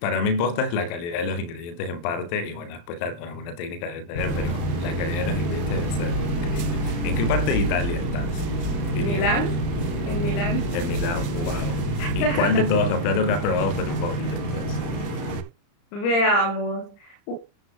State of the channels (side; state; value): right; late; 35 ms